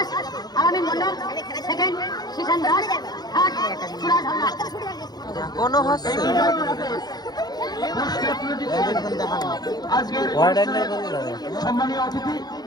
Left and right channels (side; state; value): right; late; 0.19 ms